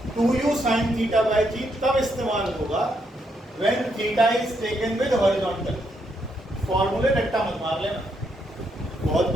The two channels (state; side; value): normal; both; correlation 0.77